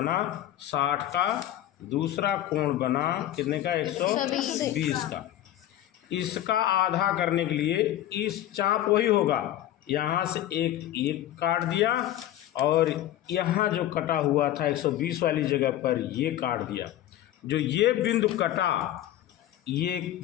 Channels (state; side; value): quieter; right; 13.0 dB